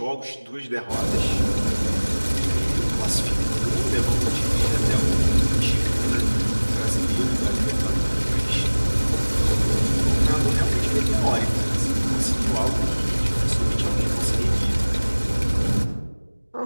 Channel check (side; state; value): both; inverted; correlation -1.00